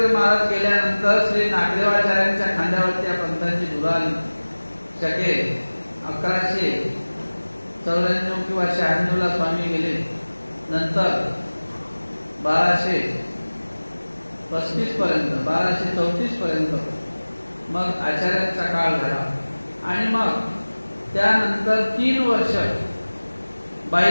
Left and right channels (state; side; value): inverted; both; correlation -1.00